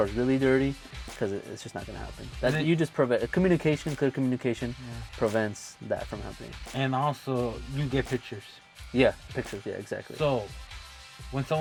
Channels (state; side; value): identical; both; correlation 1.00